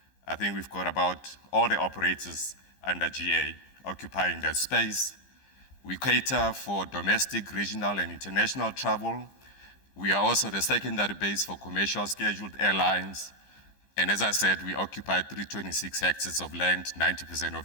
I think we've got about all the operators under GA occupying that space. We cater for domestic, regional, and international travel. We are also the secondary base for commercial scheduled airlines. And as I said, we occupy 326 hectares of land. 90% of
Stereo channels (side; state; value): right; late; 15 ms